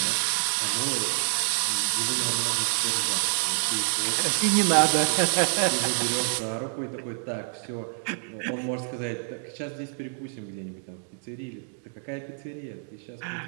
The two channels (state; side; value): silent; left; digital silence